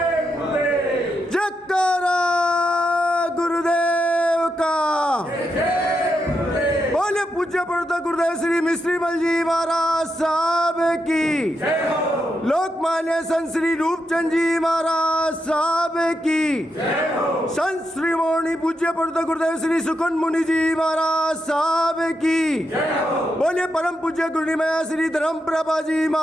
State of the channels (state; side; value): normal; both; correlation 0.84